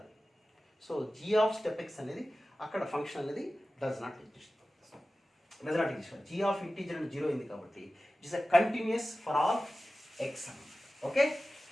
So g of step x అనేది అక్కడ ఫంక్షన్ అనేది does not exist. G of integer అంటే 0 అయింది కాబట్టి it is a continuous for all x అన్నమాట. Okay,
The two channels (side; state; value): both; normal; correlation 0.95